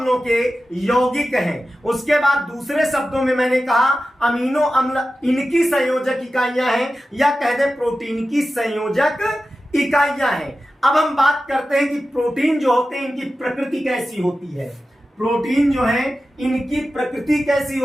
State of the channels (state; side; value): normal; both; correlation 0.93